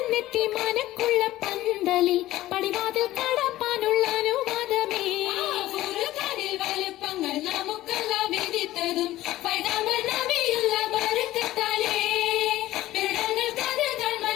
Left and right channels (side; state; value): right; quieter; 15.7 dB